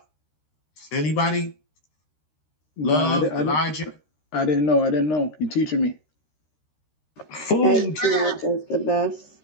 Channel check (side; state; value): right; late; 13 ms